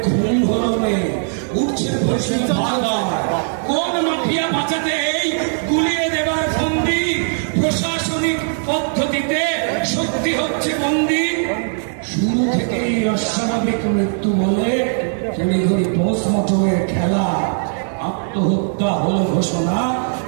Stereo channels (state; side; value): silent; left; digital silence